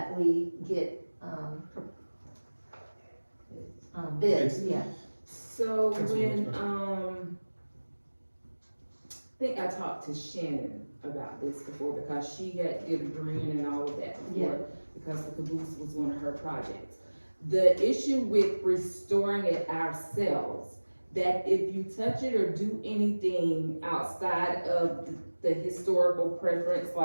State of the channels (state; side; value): inverted; both; correlation -1.00